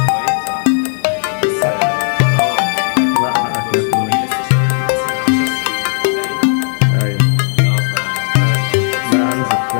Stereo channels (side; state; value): right; silent; digital silence